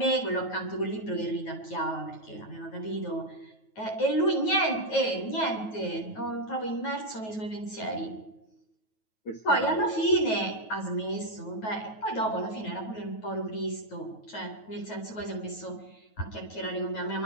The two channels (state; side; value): late; right; 9.3 ms